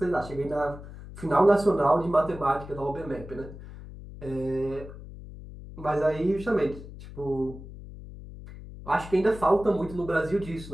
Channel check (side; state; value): left; noise; hum, 14 dB below the sound